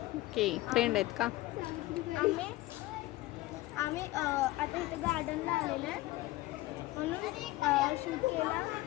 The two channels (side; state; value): right; quieter; 18.4 dB